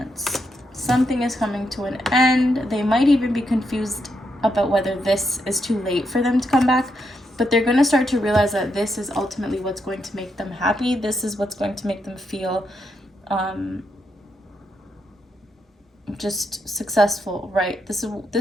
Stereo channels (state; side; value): normal; both; correlation 0.81